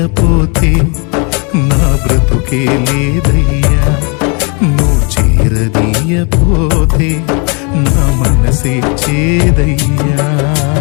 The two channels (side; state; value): right; quieter; 33.5 dB